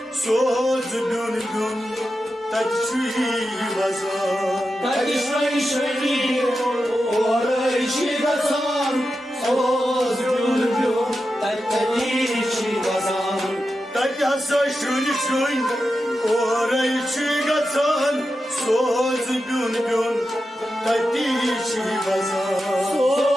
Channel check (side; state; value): both; normal; correlation 0.90